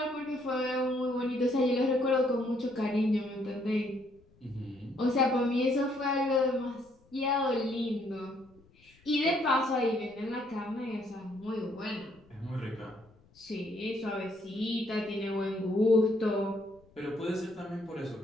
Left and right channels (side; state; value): left; noise; rumble, 30 dB below the sound